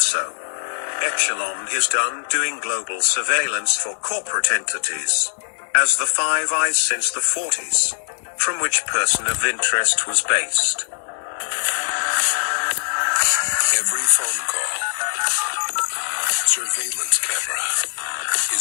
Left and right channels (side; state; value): right; silent; digital silence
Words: Echelon is done doing global surveillance for corporate entities. As the Five Eyes since the 40s. From which person of interest was based. Every phone call, surveillance camera